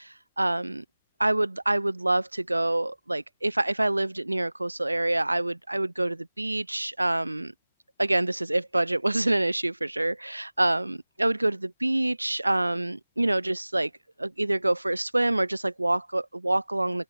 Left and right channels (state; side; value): inverted; both; correlation -1.00